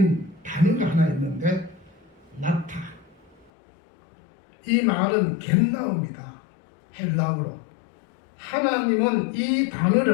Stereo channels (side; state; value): right; drops out; at 3.5 s